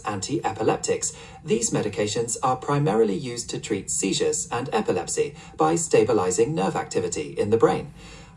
anti-epileptics, these medications are primarily used to treat seizures and epilepsy by stabilizing nerve activity in the brain.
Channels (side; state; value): both; identical; correlation 1.00